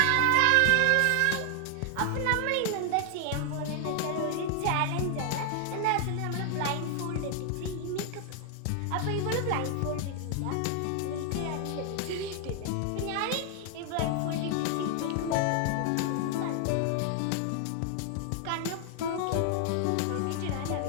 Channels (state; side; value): different; both; correlation 0.00